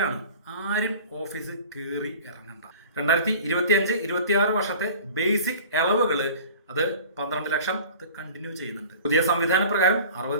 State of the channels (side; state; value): both; inverted; correlation -0.42